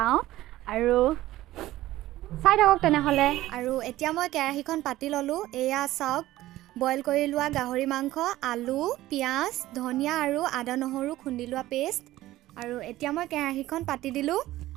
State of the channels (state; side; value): quieter; left; 15.8 dB